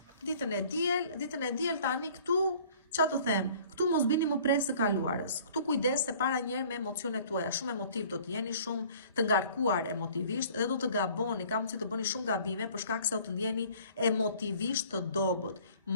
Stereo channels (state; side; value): inverted; both; correlation -0.53